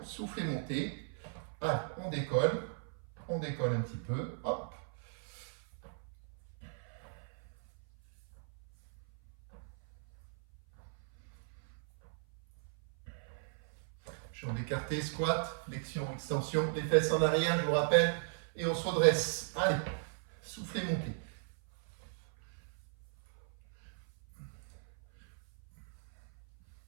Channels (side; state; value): left; silent; 53 dB below the other